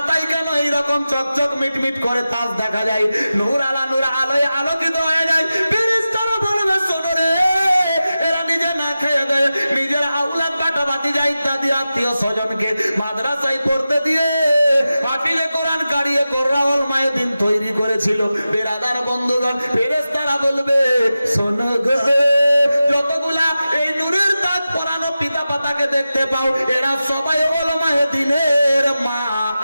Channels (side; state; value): both; inverted; correlation -0.93